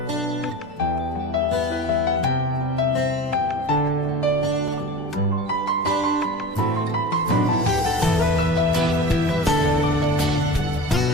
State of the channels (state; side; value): normal; both; correlation 0.33